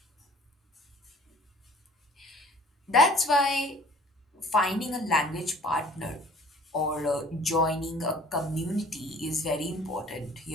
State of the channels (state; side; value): normal; both; correlation 0.51